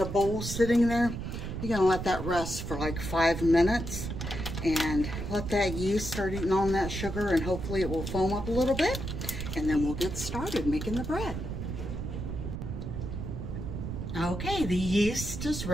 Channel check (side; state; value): right; noise; rumble, 5 dB below the sound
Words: bowl sitting there. You're gonna let that rest for like 5 minutes and let that yeast start eating on that sugar, and hopefully it will foam up a little bit, and then we'll get started making the bread. Okay, the yeast is